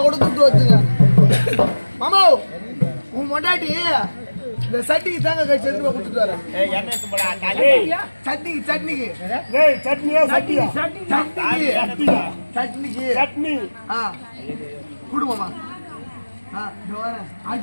கூட துட்டு வச்சுங்க மாமா. உன் மொண்டாட்டி இந்த சட்டிக்கு தாங்க கழிச்சு எடுத்து கொடுத்துட்டு வரேன். சட்னிக்கு சட்னிக்கு குடும்பமா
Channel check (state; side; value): inverted; both; correlation -1.00